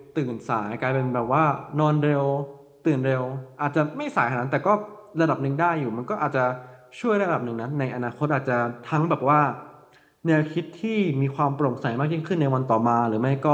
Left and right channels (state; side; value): identical; both; correlation 1.00